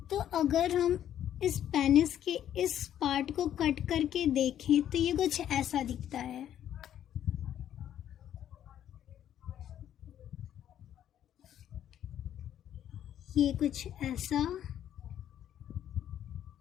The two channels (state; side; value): quieter; right; 10.7 dB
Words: तो अगर हम इस पेनिस के इस पार्ट को कट करके देखें तो ये कुछ ऐसा दिखता है। ये कुछ ऐसा।